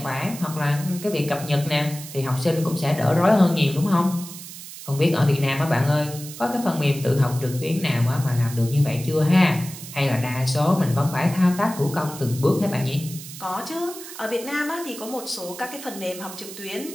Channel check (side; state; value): right; noise; hiss, 13 dB below the sound